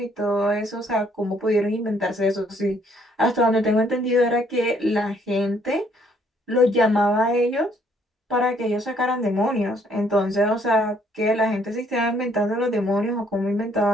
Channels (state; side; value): normal; both; correlation 0.66